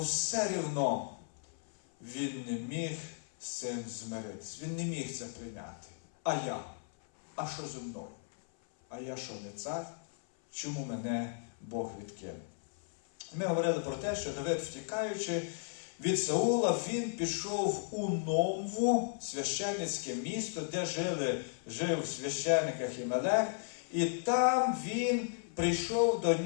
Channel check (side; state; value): right; silent; 54 dB below the other